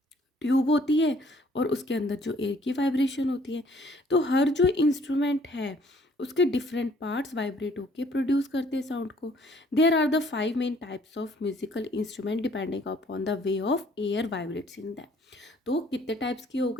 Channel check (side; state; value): both; normal; correlation 0.60